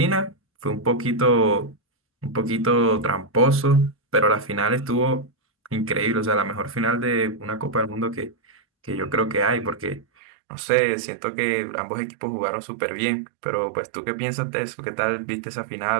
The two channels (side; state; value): left; drops out; at 10.1 s